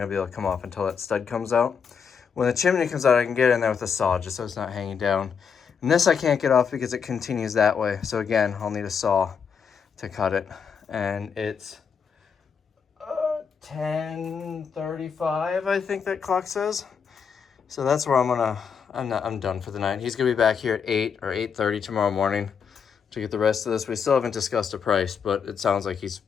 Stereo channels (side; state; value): right; quieter; 6.6 dB